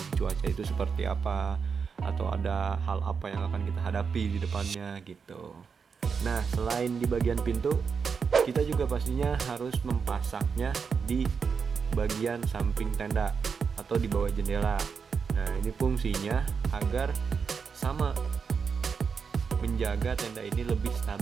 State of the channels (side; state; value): left; quieter; 5.9 dB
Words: cuaca itu seperti apa, atau ada hal apa yang akan kita hadapi di depannya gitu. Nah, selain di bagian pintu, kita juga pastinya harus mempasaknya di bagian samping tenda atau di bawah jendela. Nah, ini fungsinya agar sama menjaga tenda ini lebih